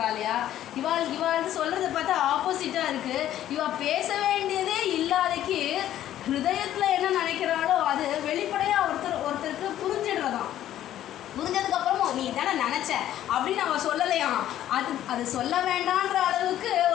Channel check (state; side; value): quieter; right; 12.2 dB